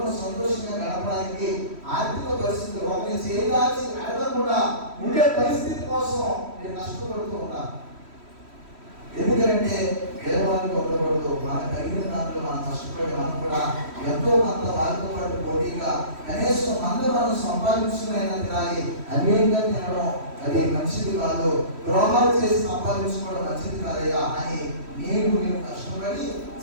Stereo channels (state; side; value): late; left; 3.1 ms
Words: సంతోషంగా గడపడానికి ఆర్థిక పరిస్థితులు ఒకరిని చేయాల్సి అడగకుండా ఉండే పరిస్థితి కోసం నేను కష్టపడుతూ ఉన్నాను. ఎందుకంటే పేదవాళ్ళకి ఉండకూడదు. మనకు కలిగిన దాంట్లో మనం కష్టపడి మనం కూడా ఎంతో కొంత వారితో పాటు పోటీగా కనీసం మనం సంపాదించుకునైనా తినాలి. అన్యంగా తినడం అది మంచిది కాదు, ద్రోహాలు చేసి సంపాదించుకోవడం మంచిది కాదయ్యా అని మేము కష్టపడి